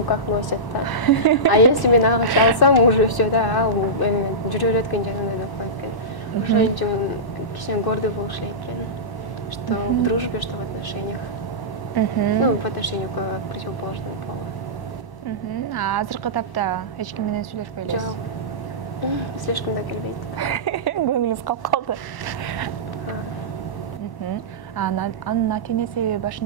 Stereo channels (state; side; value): late; right; 1.0 ms